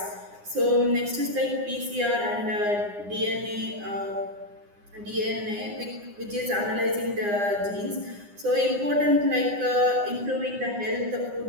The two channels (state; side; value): late; left; 9.8 ms